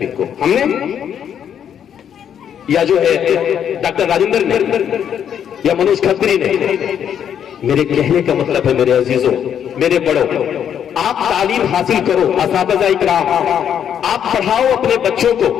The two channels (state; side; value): quieter; right; 8.9 dB